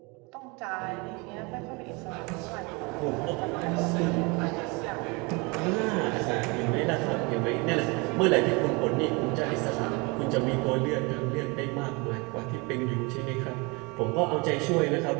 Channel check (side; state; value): left; quieter; 28.1 dB